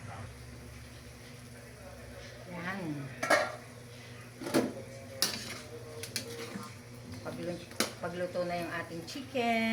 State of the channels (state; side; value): identical; both; correlation 1.00